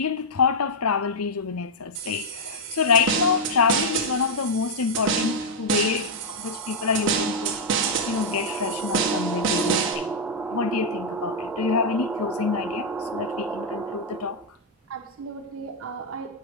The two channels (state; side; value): normal; both; correlation -0.03